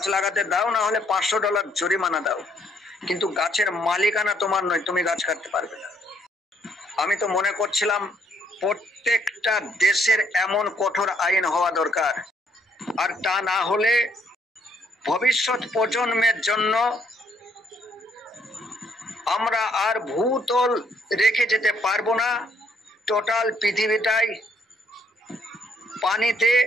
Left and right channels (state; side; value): normal; both; correlation 0.69